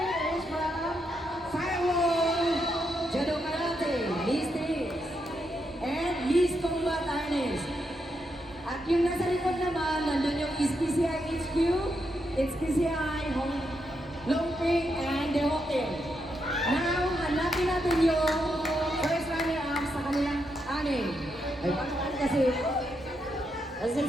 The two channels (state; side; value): normal; both; correlation 0.82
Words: from Firewall, Judo Karate, Miss Tix, and Miss Combat Artist. At yung nasa likod naman, nandun yung SPCI HQ, SPCI Longping, and The Hawking. Now, hanapin natin yung first runner-up sa kanilang anim. Ay, paano kasi?